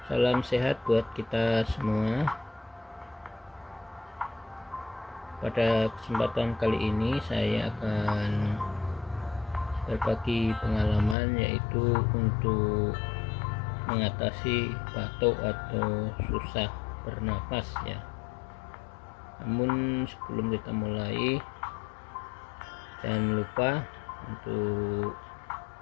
Salam sehat buat kita semua. Pada kesempatan kali ini saya akan berbagi pengalaman, yaitu untuk mengatasi batuk atau susah bernapas ya. Namun sebelum kita mulai, jangan lupa untuk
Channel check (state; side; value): drops out; right; at 11.2 s